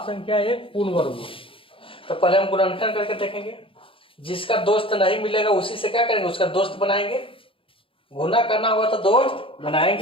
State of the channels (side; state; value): right; late; 0.26 ms